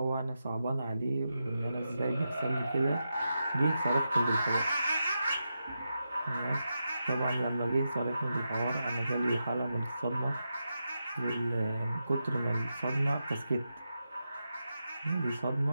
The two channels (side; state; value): both; inverted; correlation -0.88